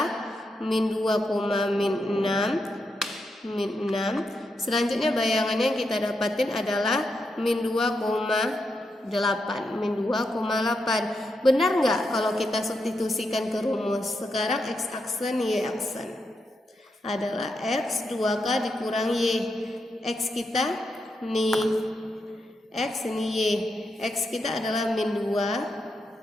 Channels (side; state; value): both; normal; correlation 0.84